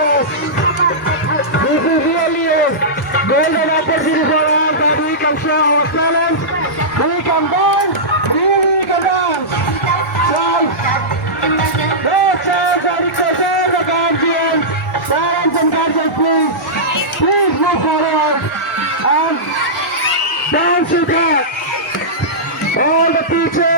This is really a golden opportunity for us that we can show our talent, we can dance, really can dance. So, no chance, I request all the guardians, parents and guardians, please move forward and dance with us. All the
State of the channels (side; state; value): both; normal; correlation -0.15